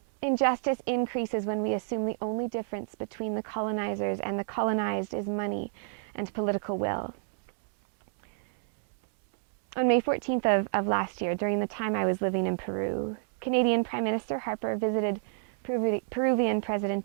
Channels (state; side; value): silent; left; 58 dB below the other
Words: injustice increases when we assume the only difference between the colonizers and the colonized is money and political will. On May 14th of last year, during the time I was living in Peru, Canadian Prime Minister Harper visited Peruvian